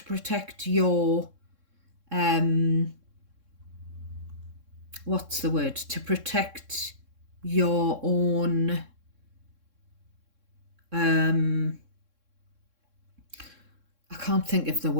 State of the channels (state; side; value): late; left; 3.6 ms